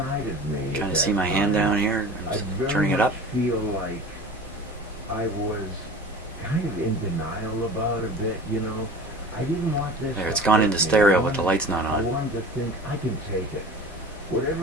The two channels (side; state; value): both; normal; correlation 0.37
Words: of me. Trying at to see that my hand time, down here. I'm I just very turning it up. much feel like I was kind of in denial about a bit, you know. I didn't want this. There, it's to gone hurt into me. stereo, I but the wanted- light's not I on. wanted to think I can take it.